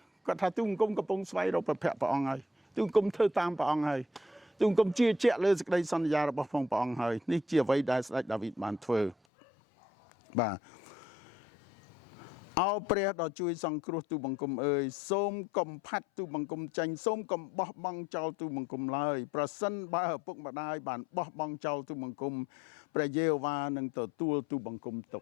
គាត់ថាទូបង្គំកំពុងស្វែងរកព្រះភ័ក្ត្រព្រះអង្គហើយទូបង្គំធ្វើតាមព្រះអង្គហើយទូបង្គំជឿជាក់លើសេចក្តីសន្យារបស់ព្រះអង្គហើយនេះជាអ្វីដែលស្ដេចដាវីតបានធ្វើបាទអោព្រះដ៏ជួយសង្គ្រោះទូបង្គំអើយសូមកំផាត់ទូបង្គំចេញសូមកំបោះបង់ចោលទូបង្គំឡើយប្រសិនបើឪពុកម្ដាយបានបោះបង់ចោលទូបង្គំព្រះយេហូវ៉ានឹងទទួលទូបង្គំទុ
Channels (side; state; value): right; drops out; at 9.2 s